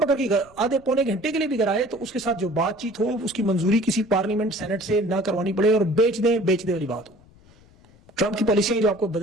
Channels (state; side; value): noise; left; rumble, 27 dB below the sound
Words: اگر آدھے پونے گھنٹے کے لیے بھی گھر آئے تو اس کے ساتھ جو بات چیت ہو، اس کی منظوری کسی پارلیمنٹ سینٹ سے نہ کروانی پڑے اور بیچ دیں والی بات ہو. ٹرمپ کی پالیسیاں جو آپ کو